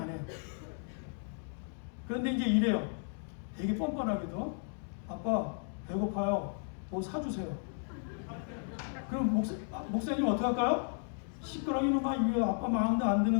해요. 그런데 이제 이래요. 되게 뻔뻔하게도 아빠 배고파요. 뭐 사주세요. 그럼 목사님 어떻게 할까요? 시끄러기는 왜 아빠 마음도 안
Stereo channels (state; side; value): silent; right; 55 dB below the other